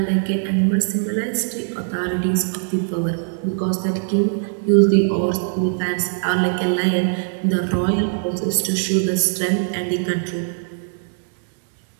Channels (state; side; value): silent; left; 61 dB below the other